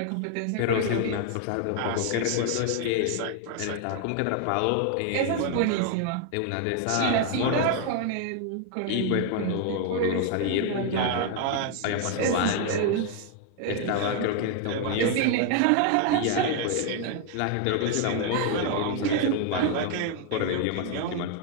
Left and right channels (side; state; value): both; different; correlation 0.00